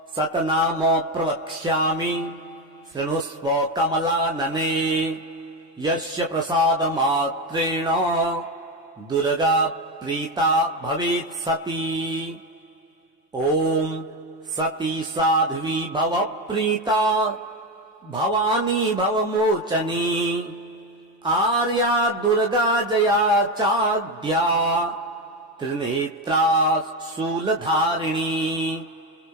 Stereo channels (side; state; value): both; normal; correlation 0.13